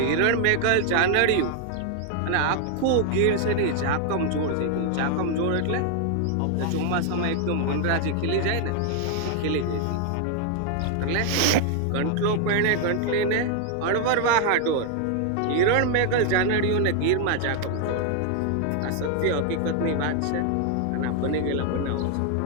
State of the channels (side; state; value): both; different; correlation 0.00